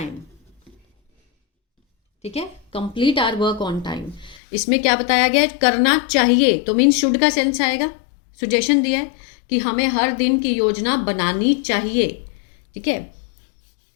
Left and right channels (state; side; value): drops out; right; at 4.4 s